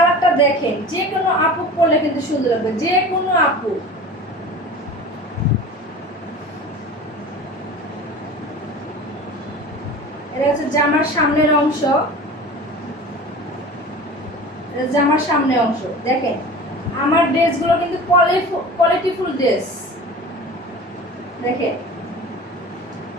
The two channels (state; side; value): normal; both; correlation 0.37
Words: দেখেন, যে কোনো আপু পরলে কিন্তু সুন্দর লাগবে, যে কোনো আপু। এটা হচ্ছে জামার সামনের অংশ, এটা জামার সামনের অংশ। দেখেন আমার ড্রেসগুলো কিন্তু কোয়ালিটিফুল ড্রেস। দেখেন,